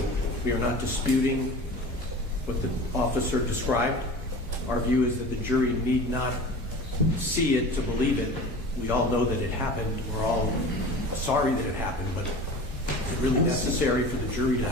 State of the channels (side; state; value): both; normal; correlation 0.37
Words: we are not disputing what the officer described. Our view is that the jury need not see it to believe it. We all know that it happened. We're all sorry that it happened, but is it really necessary for the jury to